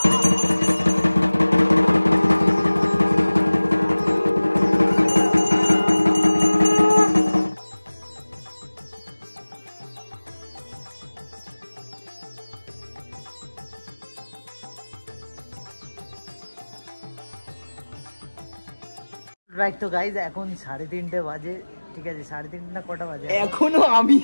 রাইট। তো গাইজ এখন 3:30 বাজে, ঠিক আছে 3:30 না কটা বাজে? এখনো আমি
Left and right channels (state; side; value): inverted; both; correlation -1.00